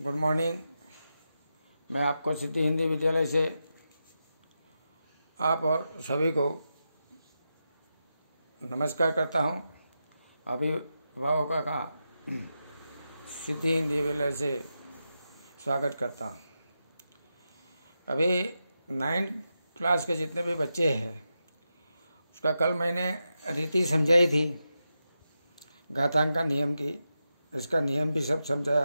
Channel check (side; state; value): both; inverted; correlation -0.88